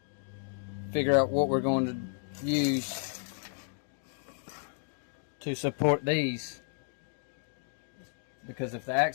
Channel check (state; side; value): silent; right; digital silence